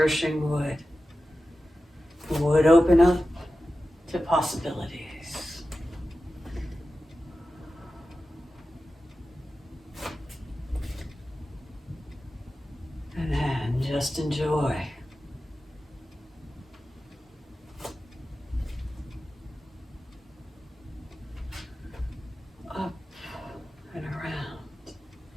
wood. Wood open up to possibilities. And then just enjoy. Up and around,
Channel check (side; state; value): both; normal; correlation 0.94